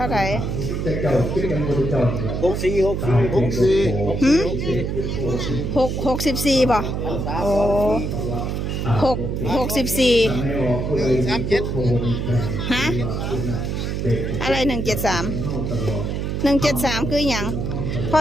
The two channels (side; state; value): right; noise; hum, 2 dB below the sound